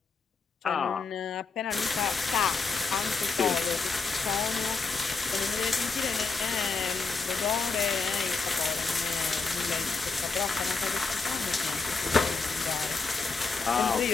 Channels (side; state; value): right; quieter; 4.4 dB